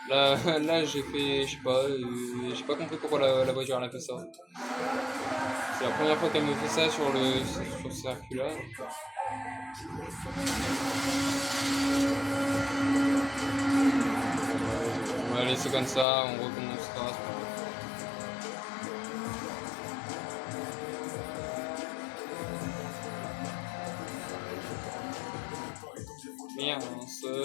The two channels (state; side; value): drops out; right; at 16.1 s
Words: là j'ai fait, je sais pas compris pourquoi la voiture elle a fait ça. C'est la première fois qu'elle me fait ça sur ce circuit là. On va laisser comme ça, on recommencera. Merde,